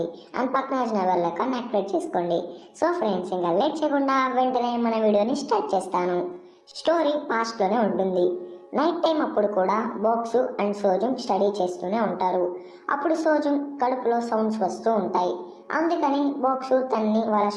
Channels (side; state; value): both; identical; correlation 1.00